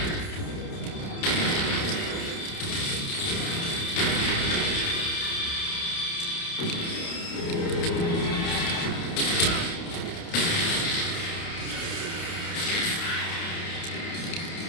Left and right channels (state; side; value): late; right; 29 ms